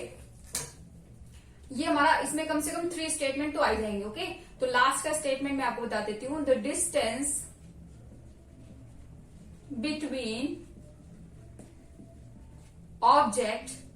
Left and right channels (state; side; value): identical; both; correlation 1.00